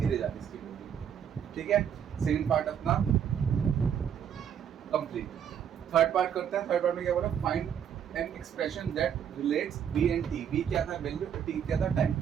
जाती है इसकी वैल्यू। ठीक है, सेकंड पार्ट अपना कंप्लीट। थर्ड पार्ट करते हैं। थर्ड पार्ट में क्या बोला, find an expression that relates b and t. B क्या था वैल्यू, टी क्या था टाइम।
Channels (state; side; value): quieter; left; 8.5 dB